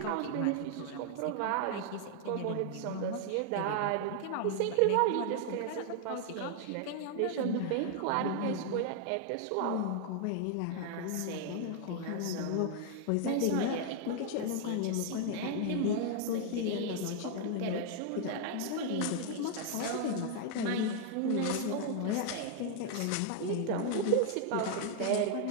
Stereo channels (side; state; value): both; different; correlation 0.00